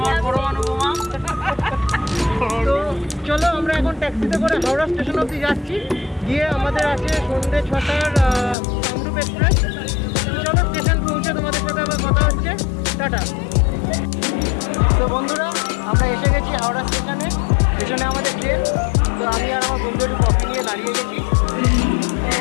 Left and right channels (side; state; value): right; drops out; at 8.6 s